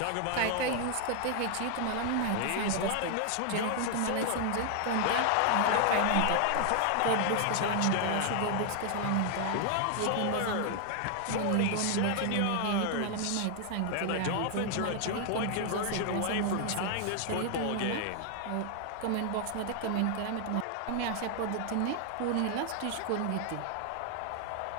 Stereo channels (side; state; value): both; different; correlation 0.00